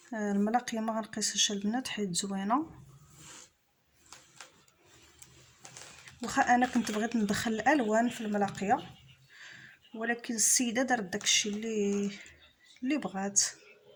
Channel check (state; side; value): identical; both; correlation 1.00